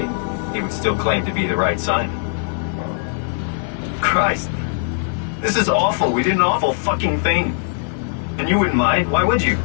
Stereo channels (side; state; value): right; silent; 66 dB below the other